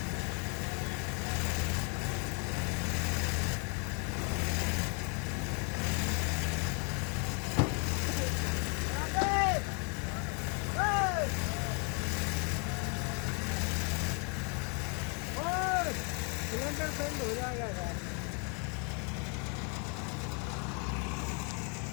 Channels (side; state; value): right; quieter; 36.4 dB